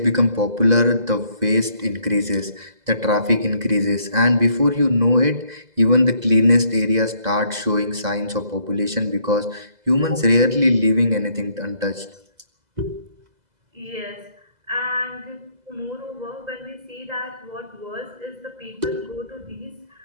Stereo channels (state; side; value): late; left; 2.0 ms